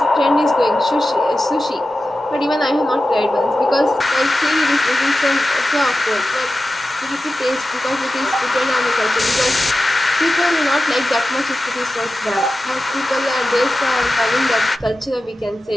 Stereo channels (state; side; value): normal; both; correlation 0.93